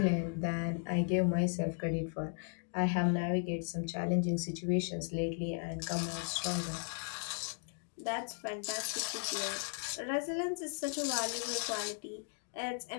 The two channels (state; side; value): silent; right; 54 dB below the other